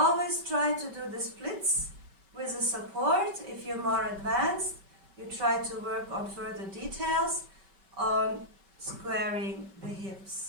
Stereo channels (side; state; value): left; late; 5.2 ms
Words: try to do the splits with a support. If you're more advanced, you try to work on further details on squaring the